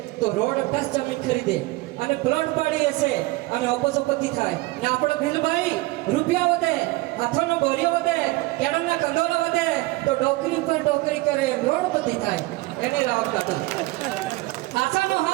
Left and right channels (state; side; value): quieter; left; 20.6 dB